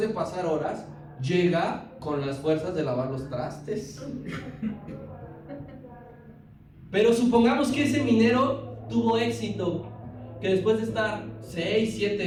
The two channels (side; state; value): both; identical; correlation 1.00